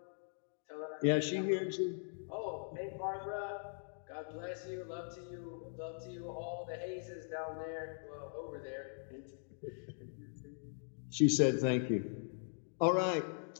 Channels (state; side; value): silent; right; digital silence